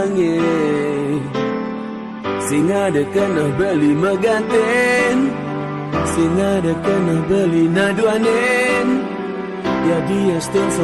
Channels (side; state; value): both; identical; correlation 1.00